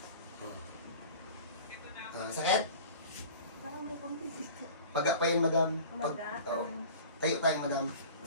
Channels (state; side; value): inverted; both; correlation -0.41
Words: Sakit? Parang may konti dito. Paga pa yun, Madam. Tayo tayo, Madam.